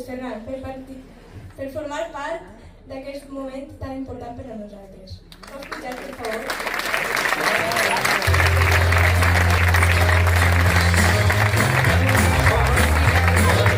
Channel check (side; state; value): both; identical; correlation 1.00